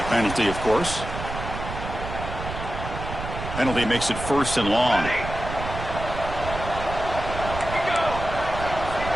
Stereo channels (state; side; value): noise; right; rumble, 7 dB below the sound